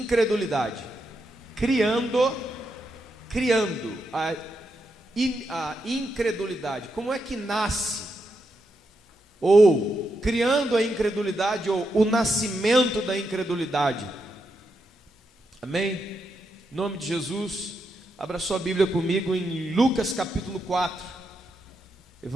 Criando a incredulidade. Como é que nasce? Ou criando a incredulidade, ou o nascimento da incredulidade. Amém? Em nome de Jesus, abra sua Bíblia comigo em Lucas capítulo 4.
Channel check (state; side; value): normal; both; correlation 0.83